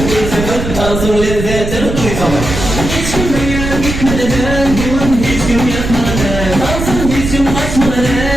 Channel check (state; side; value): noise; right; rumble, 5 dB below the sound